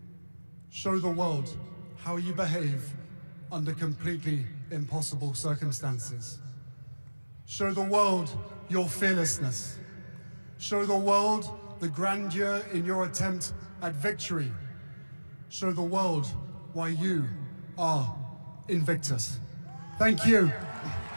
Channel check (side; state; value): both; inverted; correlation -1.00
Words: Show the world how you behave under completely impossible circumstances. Show the world your fearlessness. Show the world the grandeur in your attempt at victory. Show the world why you are Invictus. Thank you.